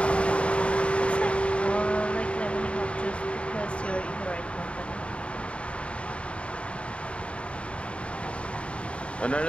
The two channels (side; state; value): right; late; 0.060 ms